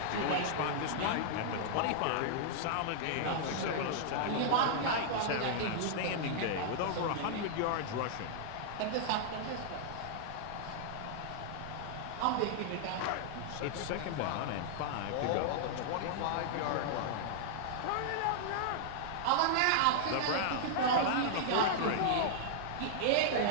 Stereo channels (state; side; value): different; both; correlation -0.01